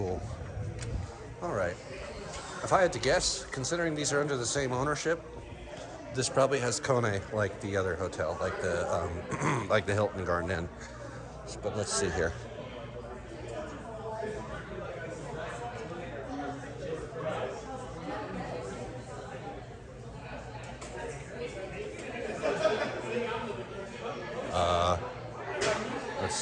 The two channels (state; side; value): identical; both; correlation 1.00